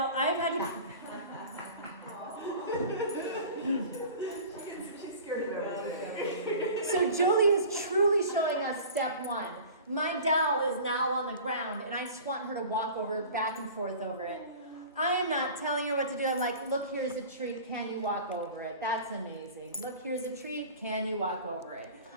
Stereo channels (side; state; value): both; inverted; correlation -0.40